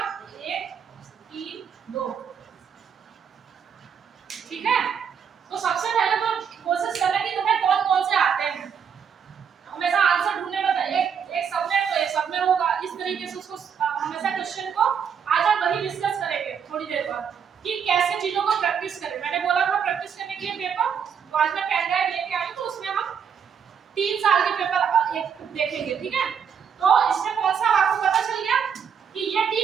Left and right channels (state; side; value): quieter; left; 7.3 dB